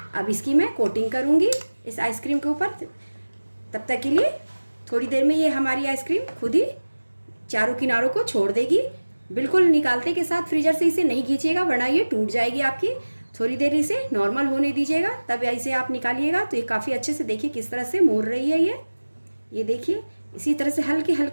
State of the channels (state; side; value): inverted; both; correlation -1.00